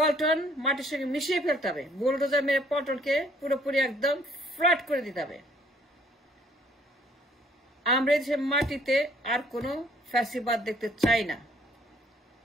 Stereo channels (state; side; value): normal; both; correlation 0.61